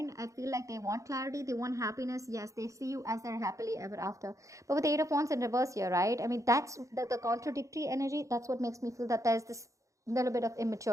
I feel like they want clarity, they want happiness. Yes, they see you as their happily ever after. But with the Eight of Wands in reverse here, right? I mean, that's the contradictory energy. That's what makes me feel that there's this little bit of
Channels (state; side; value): late; left; 0.15 ms